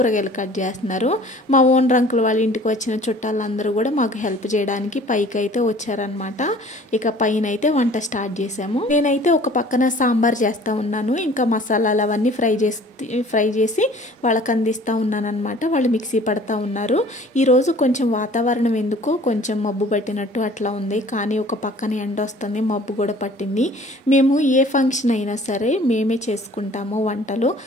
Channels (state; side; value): normal; both; correlation 0.50